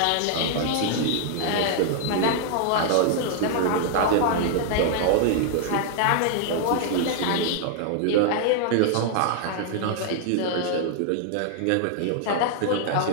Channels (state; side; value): different; both; correlation 0.00